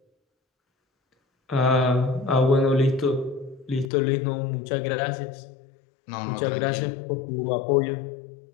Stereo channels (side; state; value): right; drops out; at 3.9 s